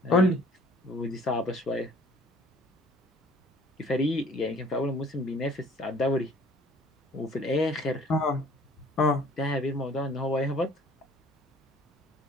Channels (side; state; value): both; normal; correlation 0.53